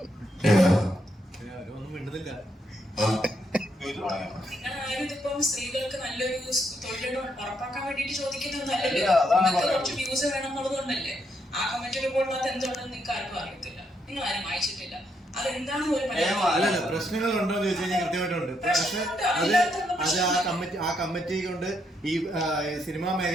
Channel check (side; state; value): both; normal; correlation 0.77